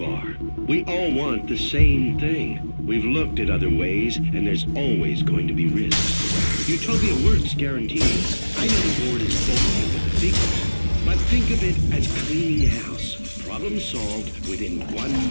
We all want the same thing. We've looked at other ways, and there's always going to be risks. Utopia works guaranteed. I know the board is bullying with the figures, but think of it as cleaning house. Problem solved within 1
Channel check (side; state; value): both; inverted; correlation -1.00